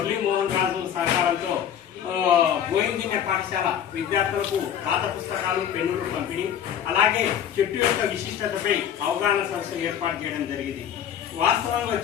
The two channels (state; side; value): quieter; right; 9.3 dB